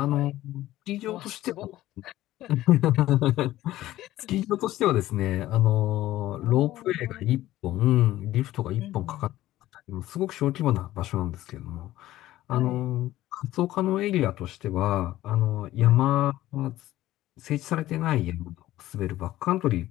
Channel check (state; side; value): quieter; right; 15.1 dB